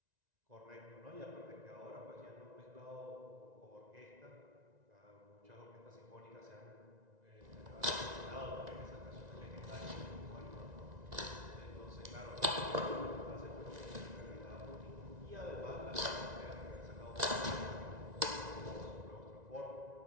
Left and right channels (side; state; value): left; late; 1.9 ms